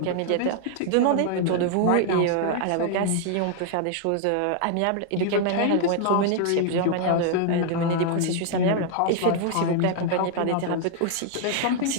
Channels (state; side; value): different; both; correlation 0.00